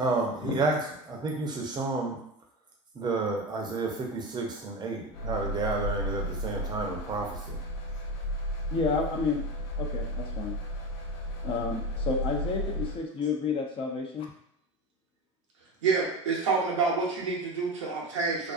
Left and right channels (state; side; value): normal; both; correlation 0.23